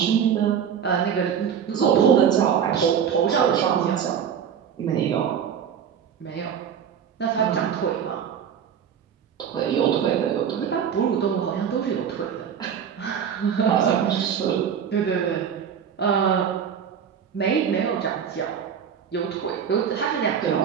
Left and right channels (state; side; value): quieter; left; 8.0 dB